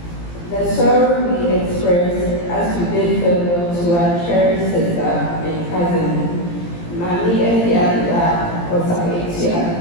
The sorrow we express as we bid farewell to our cherished sister and cousin, Mami Efiada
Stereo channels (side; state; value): right; late; 17 ms